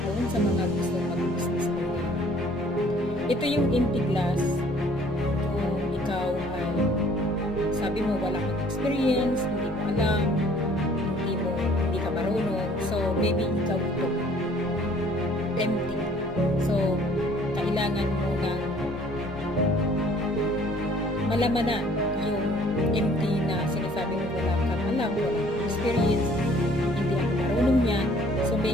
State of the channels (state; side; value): normal; both; correlation 0.56